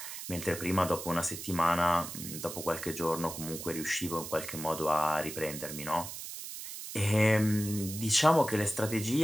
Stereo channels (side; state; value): right; noise; hiss, 9 dB below the sound